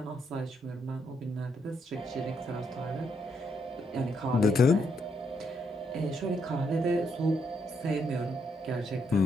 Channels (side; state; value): both; normal; correlation 0.76